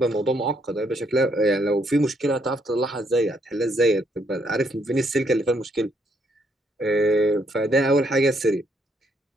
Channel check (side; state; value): both; normal; correlation 0.72